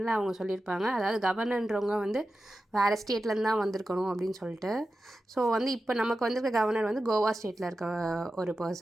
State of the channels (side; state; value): both; normal; correlation 0.92